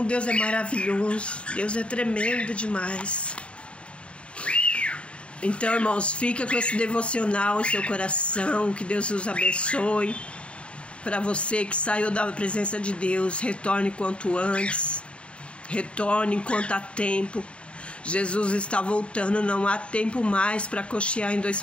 Deus é maravilhoso. Deus é tremendo demais. Então, irmãos, fica com esse devocional em seu coração. Que Deus os abençoe. Para você que saiu da presença de Deus, retorne quanto antes. Retorne enquanto há tempo. Jesus está voltando, não há tempo mais para cochear em dois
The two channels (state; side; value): late; right; 0.058 ms